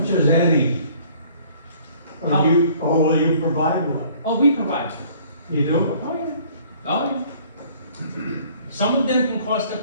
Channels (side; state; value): both; inverted; correlation -0.56